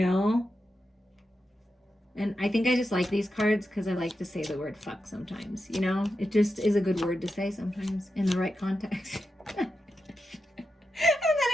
And I think I just like these cards because I like to say the word fuck sometimes, you know. It just is a good word to say sometimes in the right context. And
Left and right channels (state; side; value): normal; both; correlation 0.88